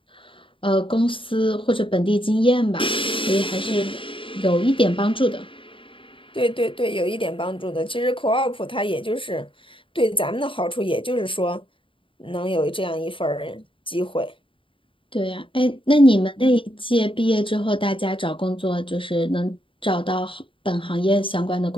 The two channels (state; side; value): late; right; 0.25 ms